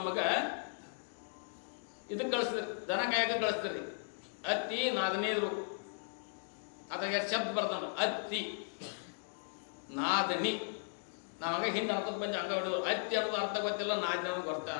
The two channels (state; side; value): silent; right; digital silence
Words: ಇದಕ್ಕೆ ಕಳಿಸ್ತಿದ್ರು, ದನ ಕಾಯಕ ಕಳಿಸ್ತಿರಿ. ಅತ್ತಿ ನಾದನೇದ್ರು ಅದ್ರಾಗ ಎರಡು ಶಬ್ದ ಬರ್ತಾನ, ಅತ್ತಿ ನಾದನಿ. ನಾವಾಗ ಹಿಂದೆ ಅರ್ಥಕ್ಕೆ ಬಂದು ಹಂಗ ಹೊಡೆದು ಅತ್ತಿ ಅನ್ನೋದು ಅರ್ಥ ಗೊತ್ತಿಲ್ಲ, ನಾದನಿ ಅನ್ನೋದು